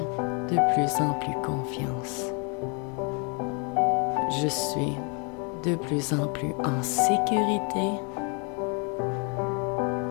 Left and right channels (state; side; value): quieter; right; 34.7 dB